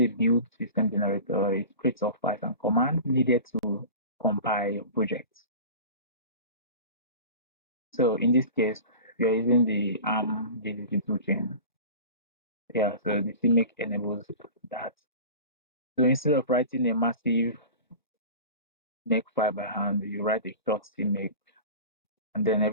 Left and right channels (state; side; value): inverted; both; correlation -0.35